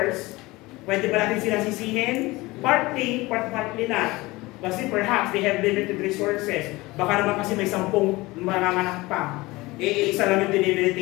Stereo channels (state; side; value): quieter; right; 21.1 dB